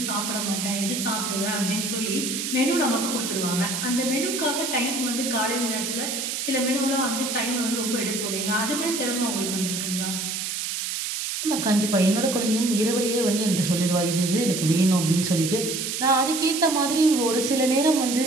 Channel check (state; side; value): noise; right; hiss, 3 dB below the sound